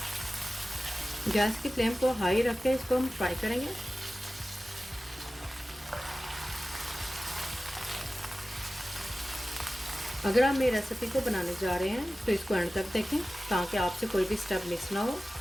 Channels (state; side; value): normal; both; correlation 0.95